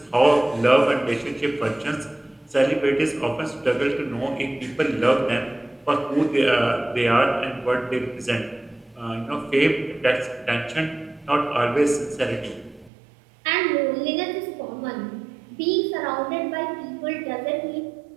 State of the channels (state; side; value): drops out; left; at 12.9 s